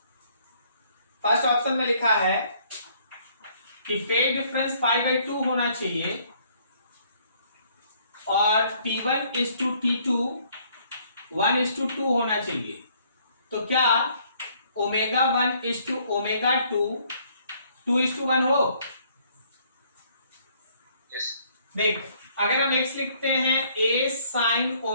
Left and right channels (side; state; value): both; inverted; correlation -0.64